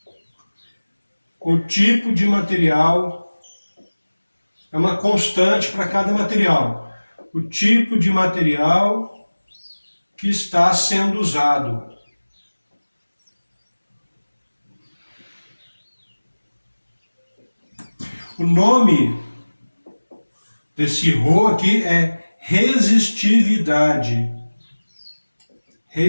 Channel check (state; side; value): inverted; both; correlation -1.00